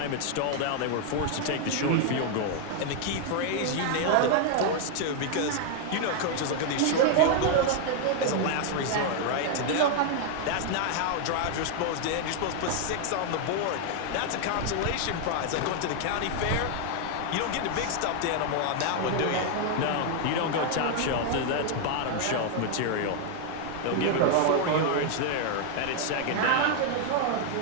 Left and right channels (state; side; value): different; both; correlation 0.00